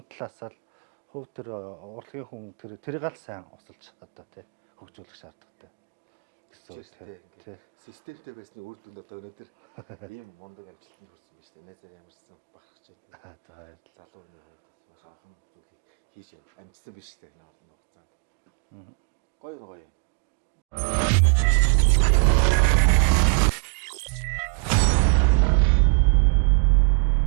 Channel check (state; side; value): quieter; left; 39.3 dB